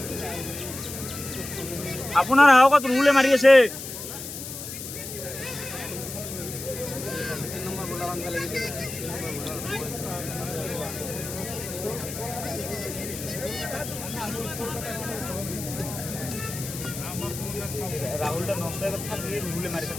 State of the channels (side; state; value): left; noise; hiss, 9 dB below the sound